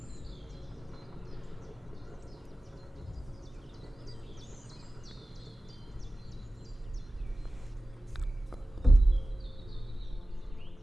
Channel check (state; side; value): normal; both; correlation 0.96